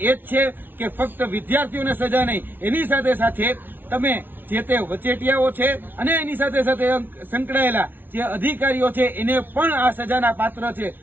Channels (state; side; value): late; left; 0.094 ms